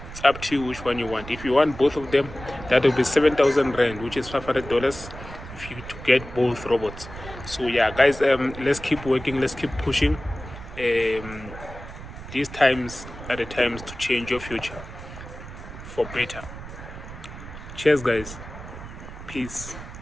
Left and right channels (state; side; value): noise; right; rumble, 13 dB below the sound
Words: It's up to you which one you want. If you want both of them, that will be 7,000 rand, which is $500 if you to get both robots. So yeah, guys, let's keep working, let's keep pushing. These times are the times to change your future for better. Cheers, guys. Peace